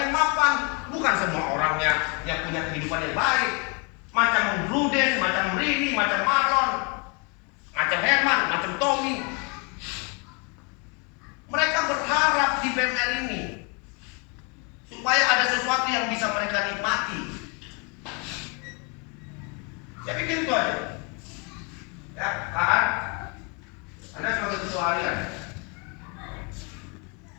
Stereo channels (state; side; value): quieter; right; 33.3 dB